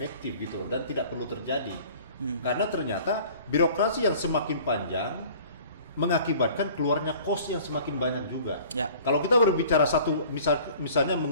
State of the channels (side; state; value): both; inverted; correlation -0.48